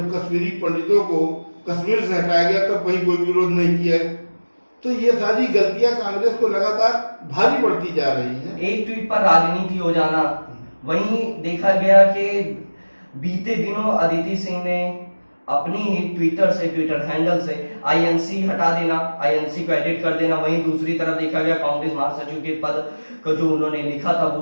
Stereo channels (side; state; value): both; inverted; correlation -1.00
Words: कश्मीरी पंडितों को कश्मीर से हटाया गया तब वहीं कोई विरोध नहीं किया। तो ये सारी गलतियां कांग्रेस को लगातार भारी पड़ती जा रही हैं। एक ट्वीट पर राजनीति हो जाना। वहीं देखा गया कि बीते दिनों अदिति सिंह ने अपनी ही ट्विटर हैंडल से आईएनसी हटा देना, आईएनसी को एडिट कर देना। वहीं दूसरी तरफ देखा गया कांग्रेस महासचिव के पद को जो उन्होंने लिखा था